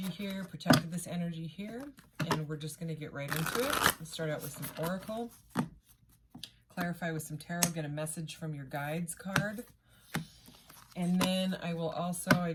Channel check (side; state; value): both; identical; correlation 1.00